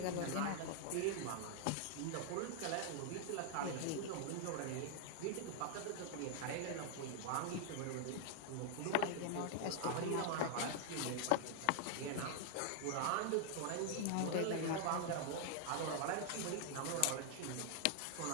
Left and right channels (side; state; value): both; different; correlation 0.00